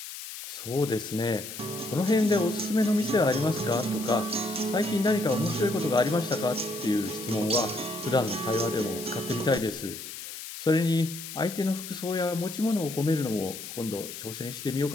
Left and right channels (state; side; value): noise; left; hiss, 10 dB below the sound